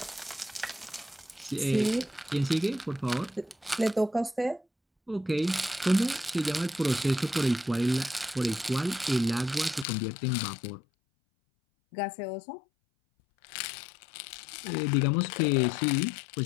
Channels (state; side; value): drops out; right; at 9.9 s